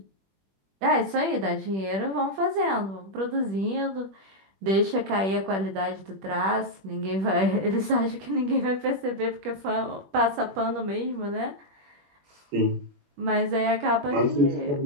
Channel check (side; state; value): left; late; 21 ms